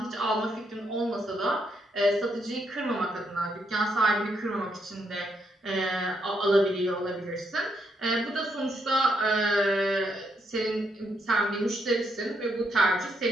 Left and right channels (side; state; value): both; normal; correlation 0.77